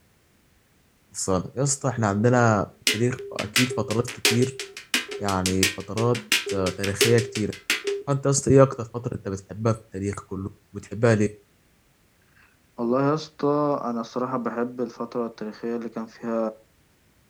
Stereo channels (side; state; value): both; identical; correlation 1.00